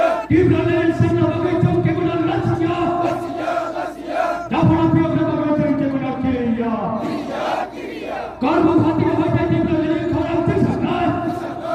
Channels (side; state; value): both; identical; correlation 1.00